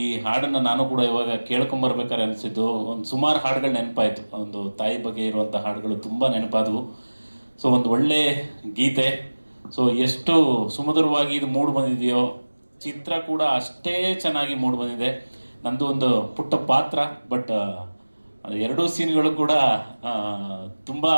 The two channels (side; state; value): both; inverted; correlation -1.00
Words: ಈ ಹಾಡನ್ನು ನಾನು ಕೂಡ ಇವಾಗ ಕೇಳ್ಕೊಂಬರ್ಬೇಕಾದ್ರೆ ಅನಿಸಿದ್ದು, ಒಂದು ಸುಮಾರು ಹಾಡುಗಳು ನೆನಪಾಯಿತು. ಒಂದು ತಾಯಿ ಬಗ್ಗೆ ಇರುವಂಥ ಹಾಡುಗಳು ತುಂಬ ನೆನಪಾದವು. ಸೊ ಒಂದು ಒಳ್ಳೆ ಗೀತೆ, ಸೊ ಎಷ್ಟು ಸುಮಧುರವಾಗಿ ಇದು ಮೂಡ್ ಬಂದಿದೆಯೋ, ಚಿತ್ರ ಕೂಡ ಅಷ್ಟೇ ಚೆನ್ನಾಗಿ ಮೂಡ್ ಬಂದಿದೆ. ನಂದು ಒಂದು ಪುಟ್ಟ ಪಾತ್ರ, ಬಟ್ ಎರಡೂ ಸೀನ್ಗಳು ಕೂಡ ತುಂಬ